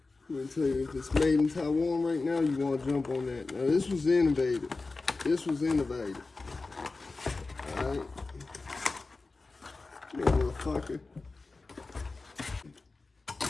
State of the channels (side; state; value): right; quieter; 3.7 dB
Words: I'm gonna tell you, if it's made in Taiwan right now, you wanna jump on that. Now this was innovative. Alright. You motherfucker.